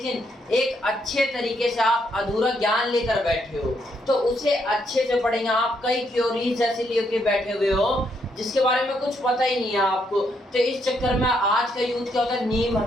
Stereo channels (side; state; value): both; normal; correlation 0.75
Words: एक अच्छे तरीके से आप अधूरा ज्ञान लेकर बैठे हो, तो उसे अच्छे से पढ़ेंगे। आप कई थ्योरीज ऐसे लेके बैठे हुए हो जिसके बारे में कुछ पता ही नहीं है आपको, तो इस चक्कर में आज का यूथ क्या होता है, नीम